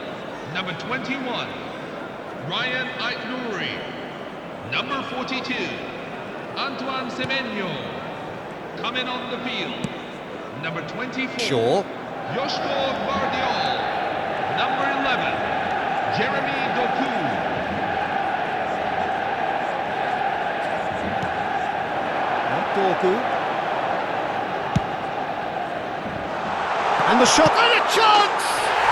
Number 21, Ryan Aït-Nouri. Number 42, Antoine Semenyo. Coming on the field. Number 24, Shaw. Yoshko Guardiol. Number 11, Jeremy Doku. Doku. And the shot, and a chance!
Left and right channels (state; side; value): identical; both; correlation 1.00